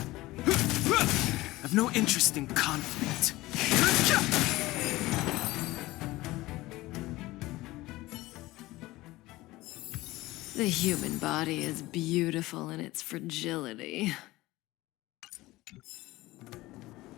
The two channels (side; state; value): right; quieter; 18.8 dB